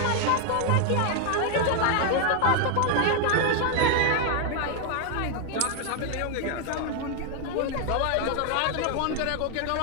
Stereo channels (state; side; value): different; both; correlation 0.00